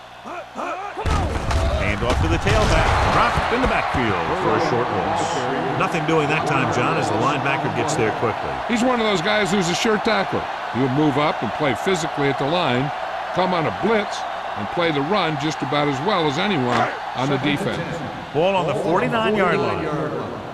Come on. Hand off to the tailback. Dropped in the backfield for a short loss. Nothing doing that time, John, as the linebacker gets there quickly. He's one of those guys who's a sure tackler. He'll move up and play physically at the line, come on a blitz, and play the run just about as well as anyone on the defense. Ball on the 49-yard line.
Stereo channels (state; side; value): identical; both; correlation 1.00